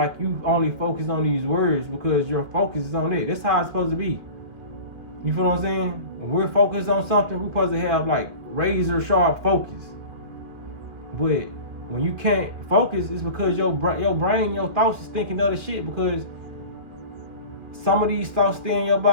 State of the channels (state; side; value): late; left; 2.4 ms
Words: you only focus on these words because your focus is on it. That's how it's supposed to be. You feel what I'm saying? When we're focused on something, we're supposed to have like razor sharp focus. But when you can't focus, it's because your brain, your thoughts is thinking other shit, because some of these thoughts stay in your